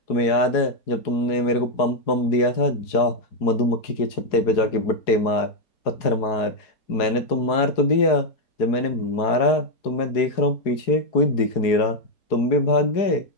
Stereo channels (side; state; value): right; late; 4.7 ms